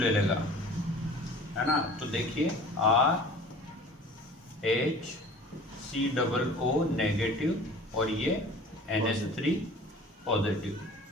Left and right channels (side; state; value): both; normal; correlation 0.44